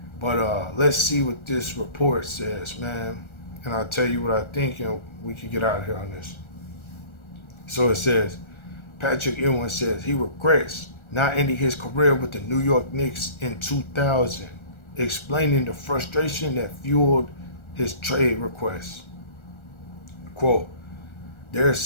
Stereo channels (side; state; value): right; late; 1.4 ms